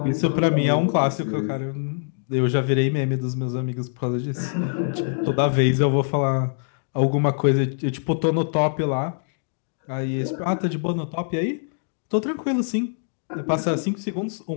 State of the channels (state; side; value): silent; right; digital silence